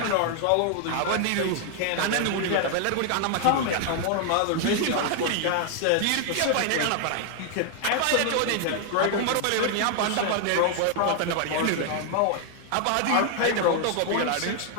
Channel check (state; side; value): different; both; correlation 0.00